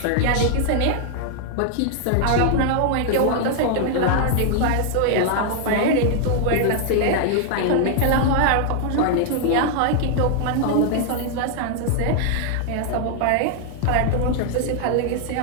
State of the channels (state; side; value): different; both; correlation 0.00